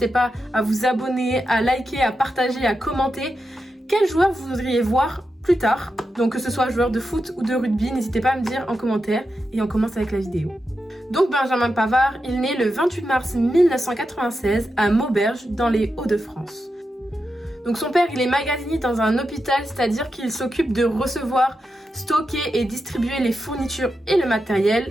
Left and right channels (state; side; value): normal; both; correlation 0.88